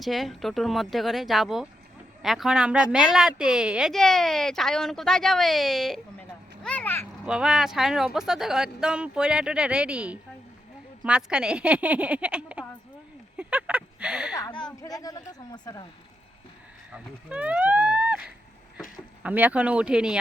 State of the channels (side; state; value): both; normal; correlation 0.83